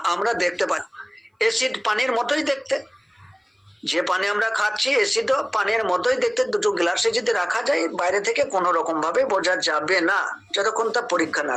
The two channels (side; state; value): both; identical; correlation 1.00